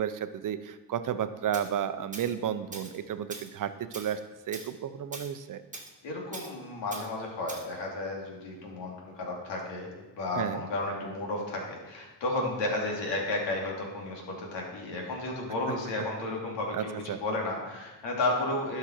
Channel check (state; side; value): normal; both; correlation -0.14